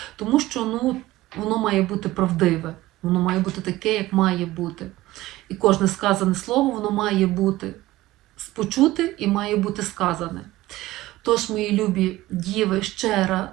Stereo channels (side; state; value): left; quieter; 17.2 dB